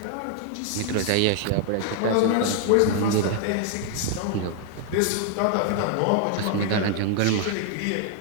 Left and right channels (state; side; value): different; both; correlation 0.00